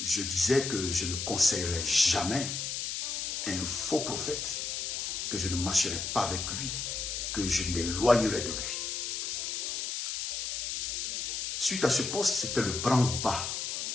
je disais que je ne conseillerais jamais un faux prophète, que je ne marcherai pas avec lui, que je m'éloignerai de lui. Suite à ce post, c'était le branle-bas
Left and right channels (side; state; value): left; noise; hiss, 3 dB below the sound